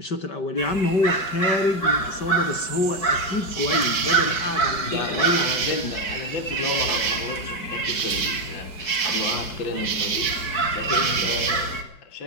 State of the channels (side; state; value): right; late; 4.7 ms